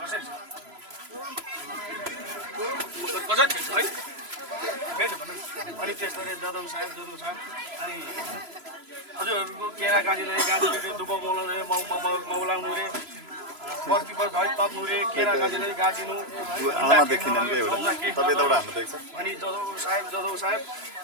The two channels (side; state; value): left; late; 3.0 ms